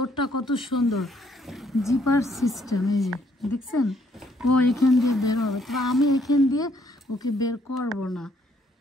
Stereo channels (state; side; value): normal; both; correlation 0.68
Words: কত সুন্দর, জিপার সিস্টেম, এই যে দেখছেন। ও এখান দিয়ে বের হবে, তবে আমি এখান দিয়ে ওকে বের করব না,